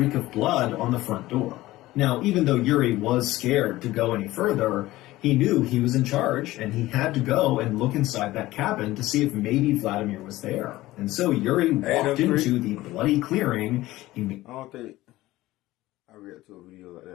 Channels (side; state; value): right; quieter; 17.2 dB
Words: of blood on the front door. Now, even though Yuri was scared to go any further, he knew he was in charge, and he had to go and look inside that cabin to see if maybe Vladimir was there. And so Yuri walked into the bloody clearing. I don't think I read to a video like